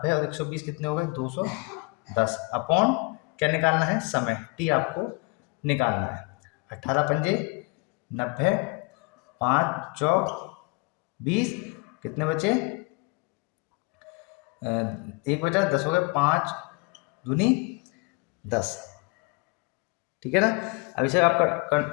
और 120 कितने हो गए, 210 अपॉन क्या निकालना है, समय टी आपको निकालना है। 18 पंजे 90, 5 चौक 20, कितने बचे, एक बचा, 10 हो गए, 5 दूनी 10, ठीक है ना। अब इसे आप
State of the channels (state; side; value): quieter; right; 27.5 dB